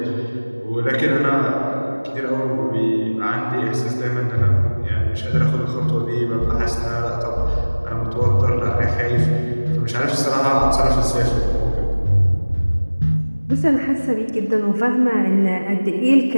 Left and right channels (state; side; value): inverted; both; correlation -1.00